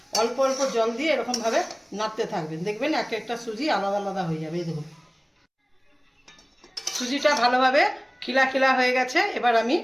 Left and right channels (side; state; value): both; identical; correlation 1.00